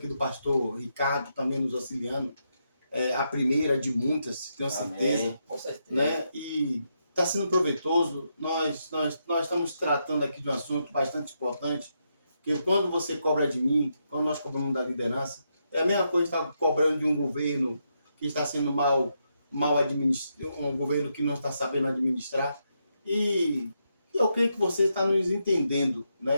do pastor Ricardo também nos auxiliando. É a primeira de muitas, tenho certeza. Amém, com certeza. Né? E está sendo proveitoso. Nós estamos tratando aqui de um assunto bastante importante, que quando você cobra de mim, quando nós cobramos da liderança, é a mesma coisa que está cobrando de um governo que está sendo mal administrado, um governo que não está sabendo administrar. E eu creio que você está nos entendendo,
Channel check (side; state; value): both; inverted; correlation -0.82